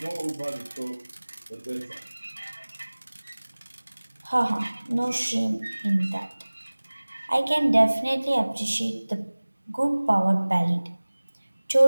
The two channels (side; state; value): both; inverted; correlation -1.00